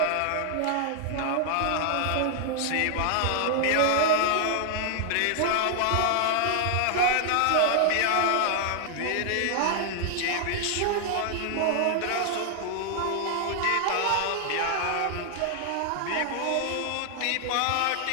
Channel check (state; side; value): different; both; correlation 0.00